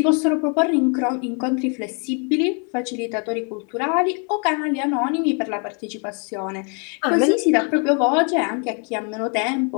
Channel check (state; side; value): quieter; right; 37.6 dB